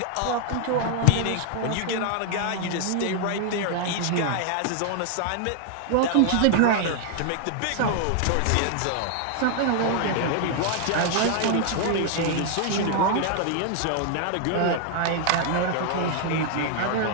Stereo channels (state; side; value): different; both; correlation 0.00